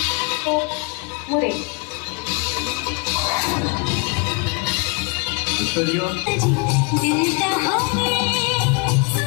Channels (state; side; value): quieter; right; 33.2 dB